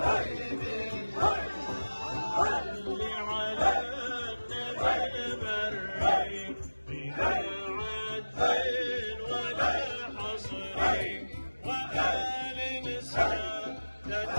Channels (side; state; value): both; inverted; correlation -1.00